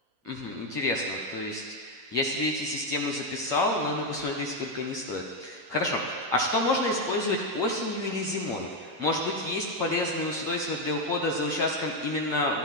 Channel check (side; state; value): left; late; 8.6 ms